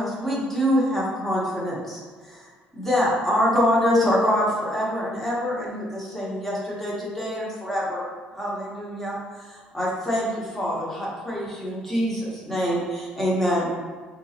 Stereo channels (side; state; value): both; normal; correlation 0.70